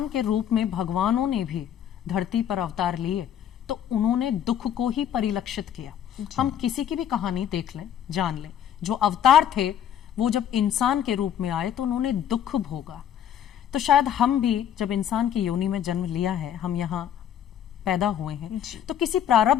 के रूप में भगवानों ने भी धरती पर अवतार लिए तो उन्होंने दुख को ही परिलक्षित किया। हम किसी की भी कहानी देख लें, जान लें, जो अवतार थे वो जब इंसान के रूप में आए तो उन्होंने दुख भोगा। तो शायद हम भी जब इंसान की योनि में जन्म लिया है, हम यहाँ पैदा हुए हैं तो किसी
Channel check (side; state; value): right; quieter; 9.8 dB